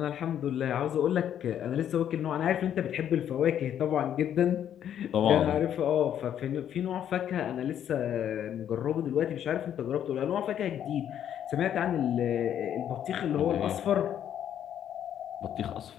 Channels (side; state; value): right; quieter; 9.9 dB